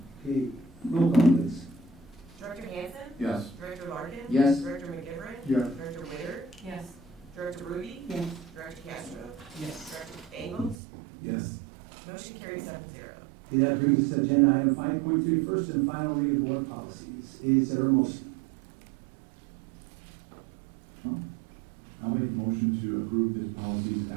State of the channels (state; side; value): drops out; left; at 10.8 s